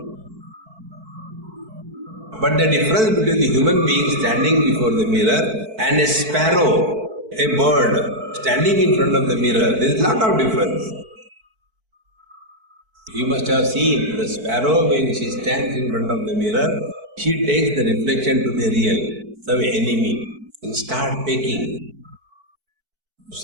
But the difference between the human being standing before the mirror and a sparrow, a bird, standing in front of the mirror, there is a lot of difference. You must have seen the sparrow when she stands in front of the mirror, she takes the reflection to the real, some enemy, and starts pecking. To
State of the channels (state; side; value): late; left; 4.5 ms